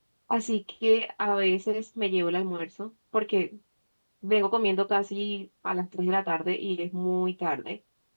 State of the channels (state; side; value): inverted; both; correlation -1.00